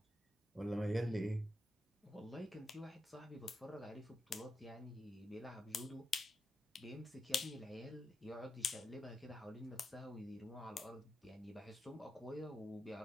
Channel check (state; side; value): normal; both; correlation 0.86